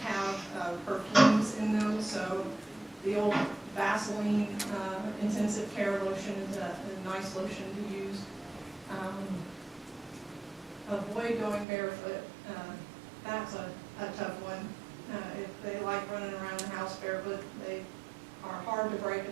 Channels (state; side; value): drops out; left; at 11.7 s